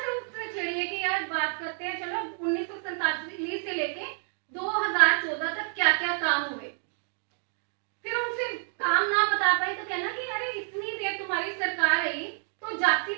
उनसे छेड़िए कि यार बात करते हैं, चलो 1947 से लेके 2014 तक क्या क्या काम हुए। फिर उनसे काम ना बता पाए तो कहना कि अरे इतनी देर तुम्हारी सरकार रही तो जाति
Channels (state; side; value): silent; left; 59 dB below the other